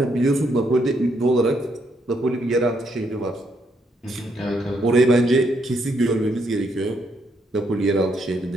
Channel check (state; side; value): normal; both; correlation 0.75